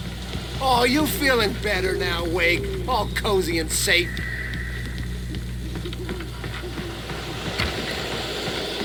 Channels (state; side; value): identical; both; correlation 1.00